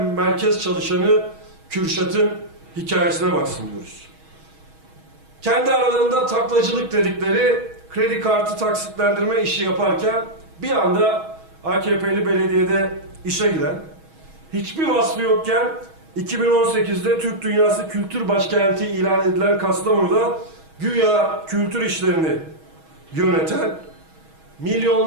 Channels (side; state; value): left; late; 6.3 ms